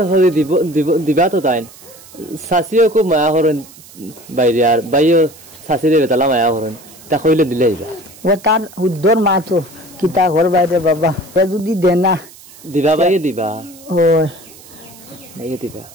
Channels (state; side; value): noise; right; hiss, 21 dB below the sound